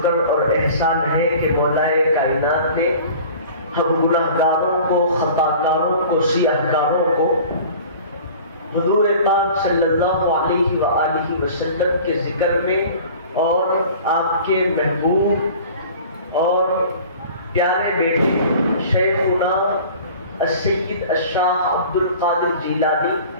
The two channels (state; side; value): inverted; both; correlation -0.44